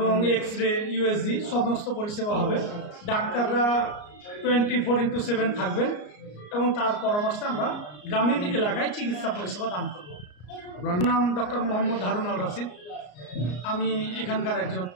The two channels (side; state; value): right; late; 34 ms